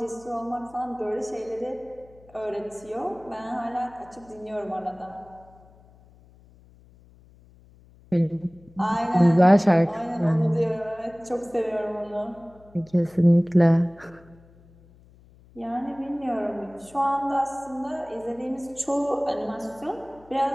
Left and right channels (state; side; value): noise; left; hum, 26 dB below the sound